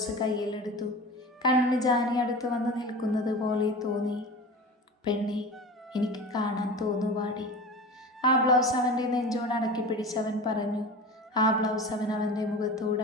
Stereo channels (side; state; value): both; normal; correlation 0.33